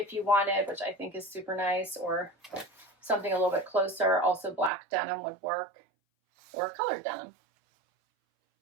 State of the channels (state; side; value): drops out; left; at 4.7 s